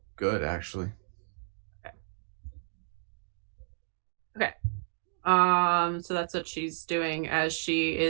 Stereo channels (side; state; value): left; silent; digital silence